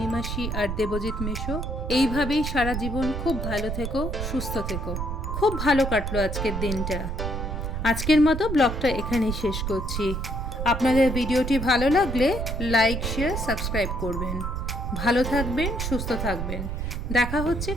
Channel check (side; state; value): right; noise; rumble, 3 dB below the sound